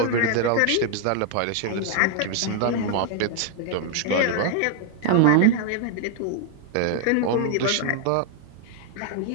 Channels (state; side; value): different; both; correlation 0.00